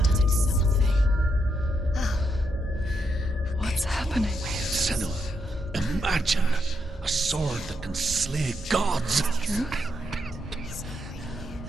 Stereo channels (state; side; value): normal; both; correlation 0.80